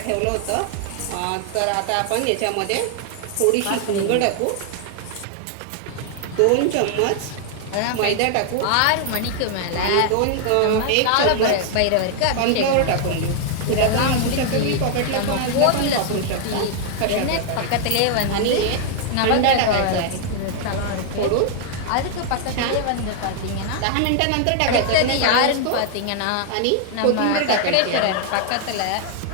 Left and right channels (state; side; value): different; both; correlation 0.00